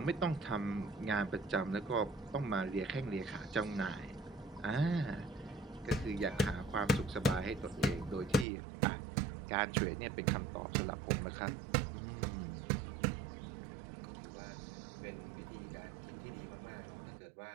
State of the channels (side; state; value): left; drops out; at 8.5 s